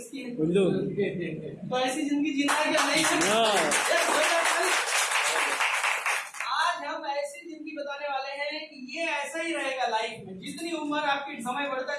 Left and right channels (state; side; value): identical; both; correlation 1.00